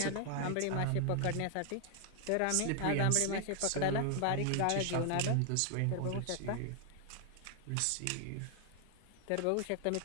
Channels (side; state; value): both; different; correlation 0.00